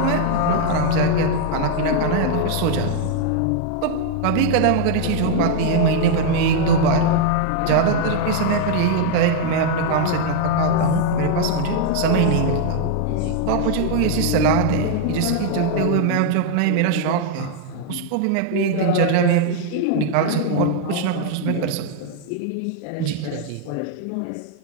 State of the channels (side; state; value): both; different; correlation 0.00